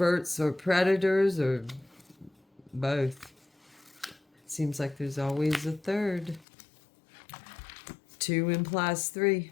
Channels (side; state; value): right; drops out; at 6.5 s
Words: or predators or both. Seems like there's always a third. 2 implies